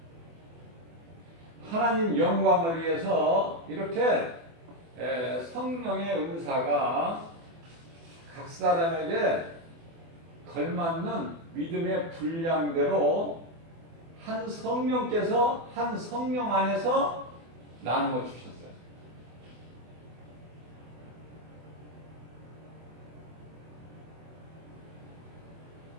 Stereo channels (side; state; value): left; late; 24 ms